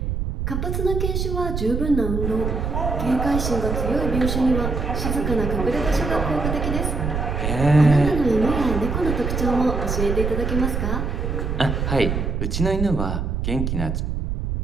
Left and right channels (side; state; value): right; noise; rumble, 2 dB below the sound